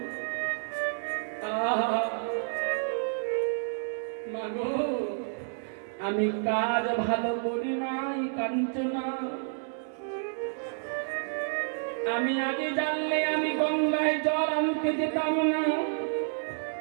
মাগো, আমি কাজ ভালো করি নাই কাঞ্চনা। আমি আগে জানলে আমি গঙ্গায় জল আনতে যেতাম না।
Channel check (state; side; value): silent; left; digital silence